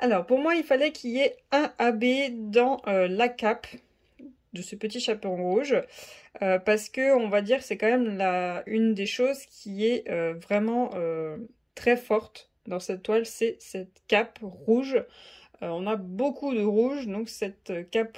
pour moi, il fallait qu'il y ait un AB dans la cape de ce petit chaperon rouge parce que on va dire que c'est quand même une des choses qui est vraiment très forte dans cette toile, c'est cette cape rouge. on a beaucoup de rouge, donc cette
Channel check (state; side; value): identical; both; correlation 1.00